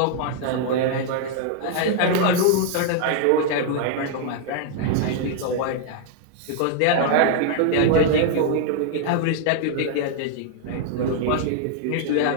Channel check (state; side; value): different; both; correlation 0.00